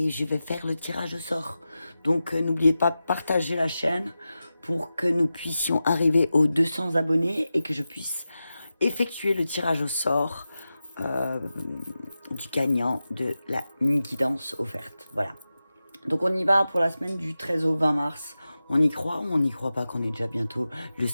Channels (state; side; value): inverted; both; correlation -0.93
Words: je vais faire le tirage au sort. Donc, n'oubliez pas de partager la chaîne pour que nous puissions arriver aux 200 abonnés et que je puisse effectuer le tirage au sort du gagnant de la guidance offerte. Voilà. Donc on y va pour la semaine du 13 au 20 mars. On y croit ou on n'y croit pas qu'on est déjà bientôt le